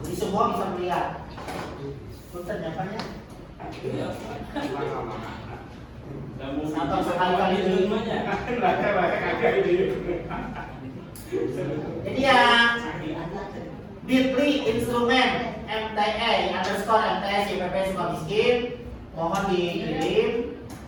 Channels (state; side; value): identical; both; correlation 1.00